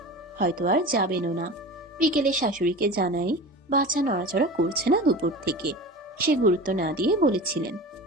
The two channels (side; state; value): both; normal; correlation 0.33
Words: হয়তো আর যাবেনও না। বিকেলে শাশুড়িকে জানাই বাচ্চা নড়াচড়া করছে না দুপুর থেকে। সে গুরুত্ব না দিয়ে বলেছিলেন,